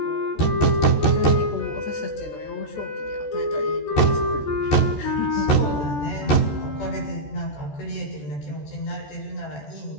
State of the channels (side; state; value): right; late; 14 ms